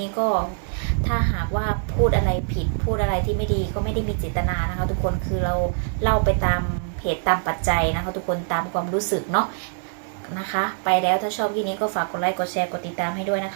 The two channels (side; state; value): left; silent; digital silence